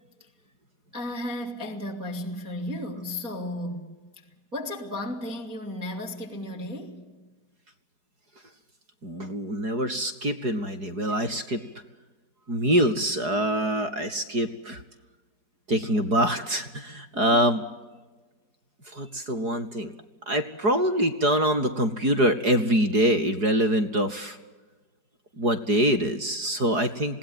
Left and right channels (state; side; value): late; left; 4.8 ms